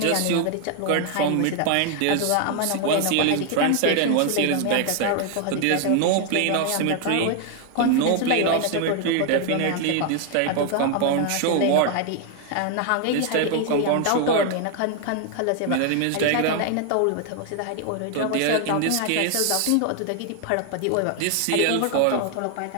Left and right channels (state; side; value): different; both; correlation 0.00